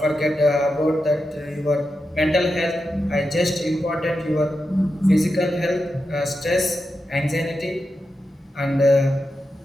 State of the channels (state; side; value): normal; both; correlation 0.88